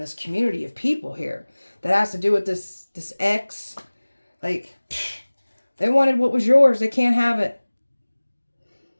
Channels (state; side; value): inverted; both; correlation -1.00